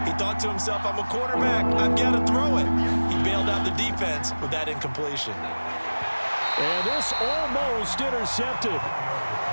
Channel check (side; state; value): both; inverted; correlation -1.00